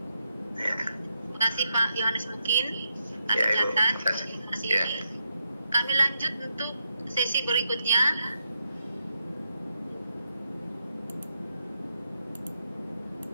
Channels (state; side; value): inverted; both; correlation -0.83